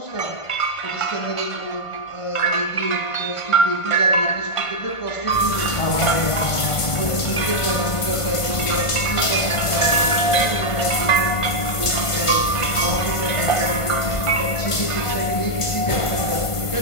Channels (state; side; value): late; right; 1.5 ms